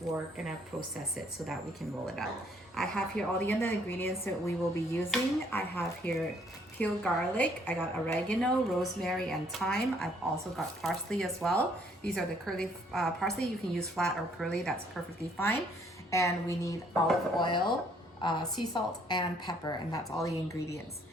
we're gonna process it so that we can roll it out. I have here all the other ingredients that we will be using. I have here peeled garlic, I got oregano, rosemary, and thyme. I've also got parsley as well. These are the curly parsley. You can use flat or curly, that's perfectly fine. And we need olive oil, sea salt, and pepper, and that's all the ingredients.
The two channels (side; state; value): both; normal; correlation 0.65